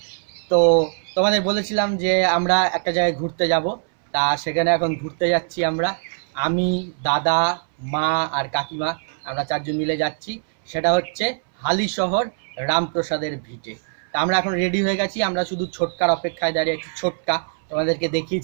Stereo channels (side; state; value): left; silent; 64 dB below the other